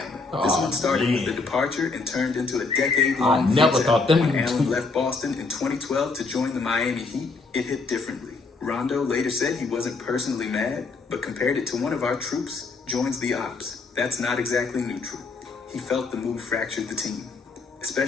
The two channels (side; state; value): right; quieter; 4.0 dB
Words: This one started with a departure and turned into a decade-long I never thought them. When Allen left Boston in 2012 to join the Miami Heat, it hit differently. Rondo later said he wasn't personally mad, but compared it to one of our troops joins the ops. That's not exactly neutral. He felt the move fractured the team,